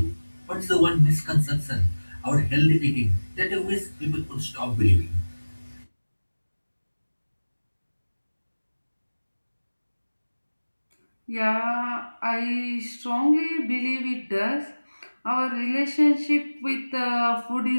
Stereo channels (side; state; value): both; inverted; correlation -1.00